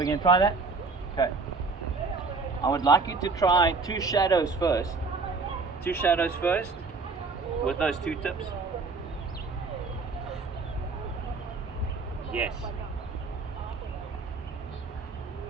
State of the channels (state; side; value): quieter; left; 4.2 dB